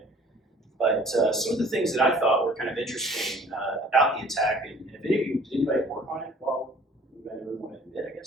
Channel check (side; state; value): both; normal; correlation 0.51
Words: But some of the things that I thought were kind of interesting about the attack, and if any of you, did anybody work on it? Well, anybody want to admit, I